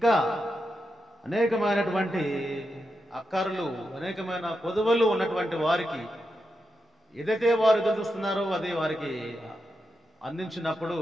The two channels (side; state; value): both; normal; correlation 0.87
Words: అనేకమైనటువంటి అక్కర్లు, అనేకమైన కొదువలు ఉన్నటువంటి వారికి ఏదైతే వారు ఎదురు చూస్తున్నారో అది వారికి అందించినప్పుడు